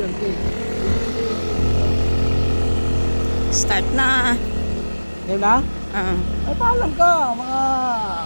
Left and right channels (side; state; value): both; inverted; correlation -1.00